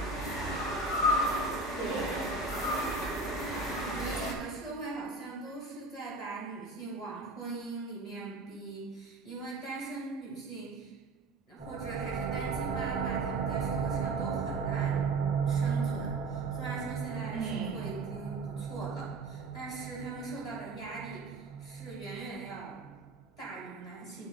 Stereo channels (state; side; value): quieter; left; 3.2 dB